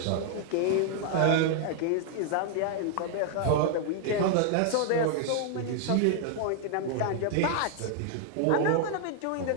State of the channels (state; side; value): different; both; correlation 0.00